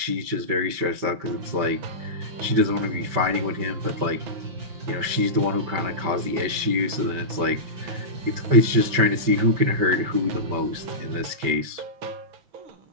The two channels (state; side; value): late; left; 5.2 ms